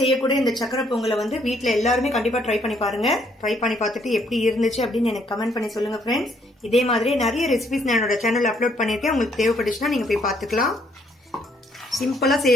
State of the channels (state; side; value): normal; both; correlation 0.68